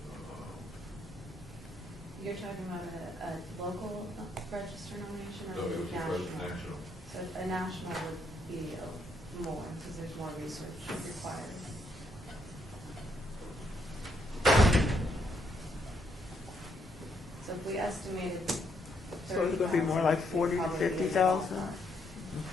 You're talking about a local register nomination No, or it was national. So a national would be more because there's more research required. So if we estimated. So it's gonna be more like 40 to 50,000?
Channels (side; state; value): both; normal; correlation 0.75